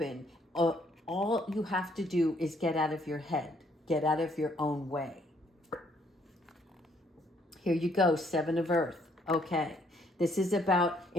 All you have to do is get out of your head. Get out of your own way. Here you go, 7 of Earth. Okay. This is about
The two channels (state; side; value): normal; both; correlation 0.68